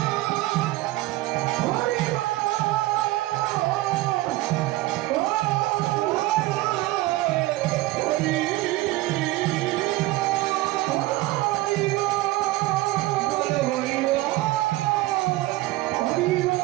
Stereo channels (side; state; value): left; quieter; 18.4 dB